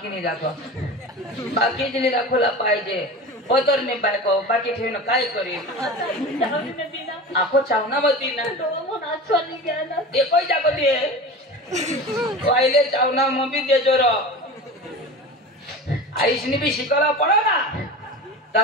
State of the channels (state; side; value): normal; both; correlation 0.31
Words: नाही दाखव बाकी दिली दाखवला पाहिजे पदर नाही बायको बाकी ठेवणं काय करेल आखो चावना बती ना नाचवानी घ्या ना एकही जागती आहे पहिले चावना मग बी देजो र आईसनी भी शिकायला पडो ना